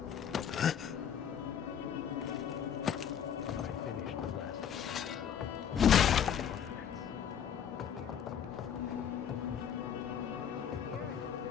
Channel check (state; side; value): quieter; right; 8.5 dB